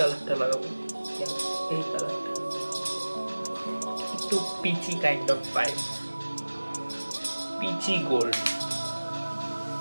লাগাবো, এই কালারটা একটু peachy kind of vibe, peachy gold.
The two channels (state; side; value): inverted; both; correlation -1.00